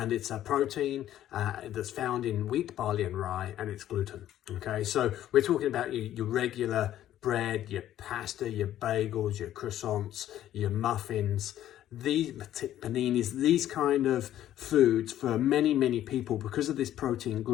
it's a protein that's found in wheat, barley and rye, and it's gluten. Okay, so we're talking about your regular bread, your pasta, your bagels, your croissants, your muffins, these paninis, these kind of foods for many people, because of this protein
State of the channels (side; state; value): right; quieter; 12.3 dB